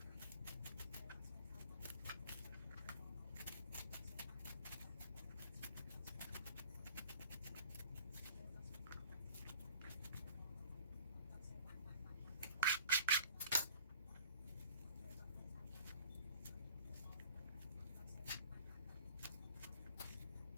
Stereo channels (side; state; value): both; inverted; correlation -0.48